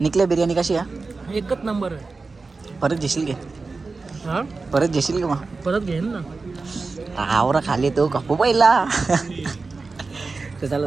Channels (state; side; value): quieter; left; 4.0 dB